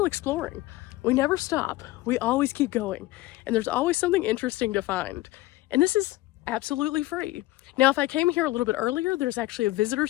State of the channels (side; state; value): right; quieter; 17.9 dB